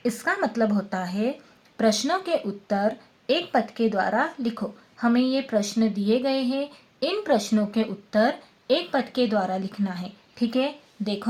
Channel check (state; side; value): identical; both; correlation 1.00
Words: इसका मतलब होता है प्रश्नों के उत्तर एक पद के द्वारा लिखो। हमें ये प्रश्न दिए गए हैं, इन प्रश्नों के उत्तर एक पद के द्वारा लिखना है। ठीक है,